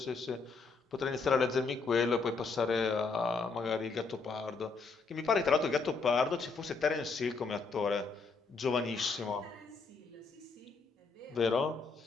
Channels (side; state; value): right; quieter; 4.4 dB